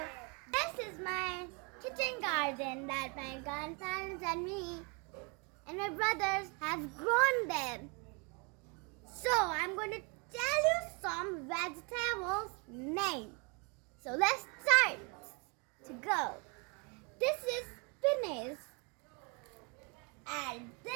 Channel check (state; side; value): quieter; left; 33.0 dB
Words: this is my kitchen garden that my grandparents and me and my brothers have grown them. So I'm going to tell you some vegetables name. So let's start to go. This is spinach and